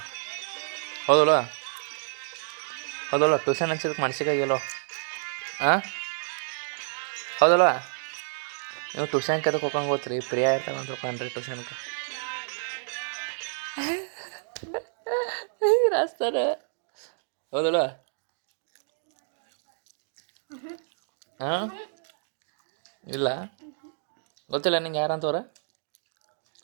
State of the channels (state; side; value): silent; left; digital silence